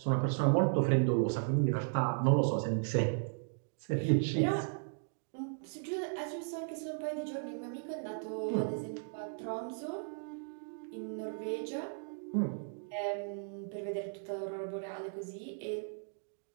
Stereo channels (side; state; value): left; silent; digital silence